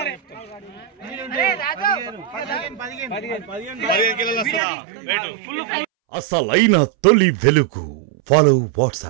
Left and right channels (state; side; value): drops out; left; at 4.6 s